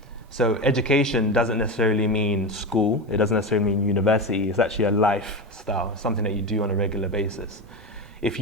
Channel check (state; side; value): normal; both; correlation 0.19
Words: So education doesn't necessarily mean school. It doesn't necessarily mean university. It's actually a lifestyle, something that you do on a regular basis. If